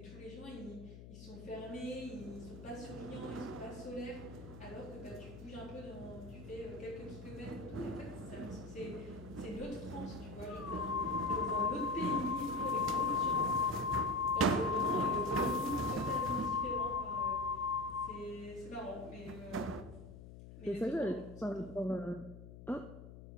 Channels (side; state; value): left; noise; hum, 14 dB below the sound